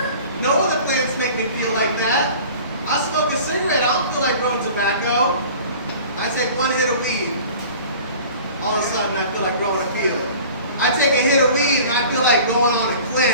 No other plants make me feel like that. I smoke a cigarette, I don't feel like growing tobacco. I take one hit of weed, all of a sudden I feel like growing a field. I take a hit of weed and I feel like going on a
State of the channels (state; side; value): inverted; both; correlation -0.43